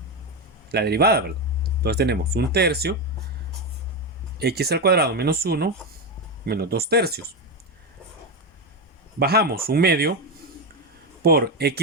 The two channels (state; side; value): normal; both; correlation 0.11